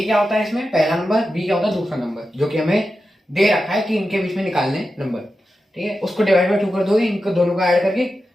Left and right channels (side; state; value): both; normal; correlation 0.91